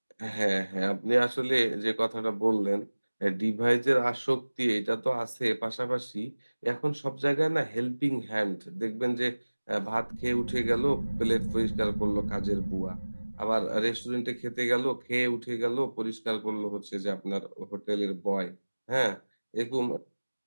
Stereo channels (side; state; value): both; inverted; correlation -1.00